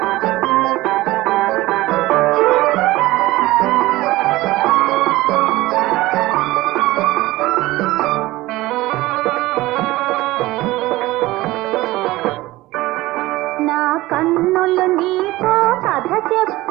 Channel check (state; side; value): quieter; left; 18.5 dB